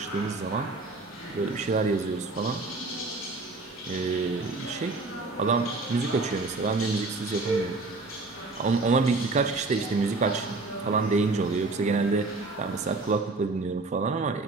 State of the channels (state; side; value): quieter; left; 3.5 dB